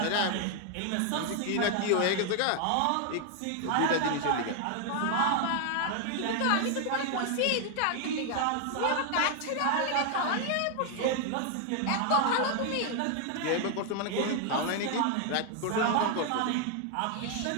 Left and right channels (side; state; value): both; different; correlation 0.00